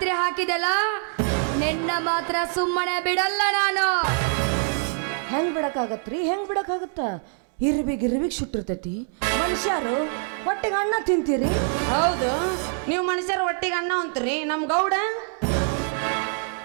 ಹಾಕಿದೆಲ್ಲ ನಿನ್ನ ಮಾತ್ರ ಸುಮ್ಮನೆ ಬಿಡಲ್ಲ ನಾನು ಹೆಂಗ್ ಬಿಡಕ್ಕಾಗತ್ತ ಇರ್ಬಿಗ್ ಸುಟ್ಟಿರ್ತೈತಿ ಮನುಷ್ಯರು ಹೊಟ್ಟೆಗೆ ಅನ್ನ ತಿಂತೀರಿ ಹೌದು ನೀವು ಮನುಷ್ಯರ ಒಟ್ಟಿಗೆ ಅನ್ನ ಅಂತೀರಿ ನಮ್ ಗೌಡ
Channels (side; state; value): left; silent; 56 dB below the other